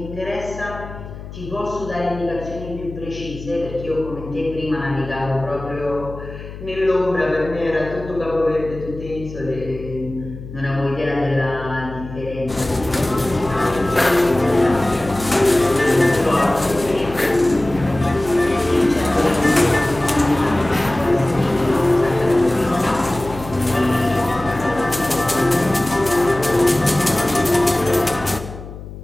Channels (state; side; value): noise; left; hum, 13 dB below the sound